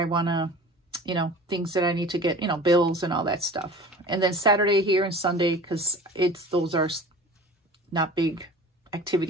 want to, you know, things that I need to get, you know, bills and all that stuff. And then Saturday here and Sunday, because those are not big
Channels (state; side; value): normal; both; correlation 0.40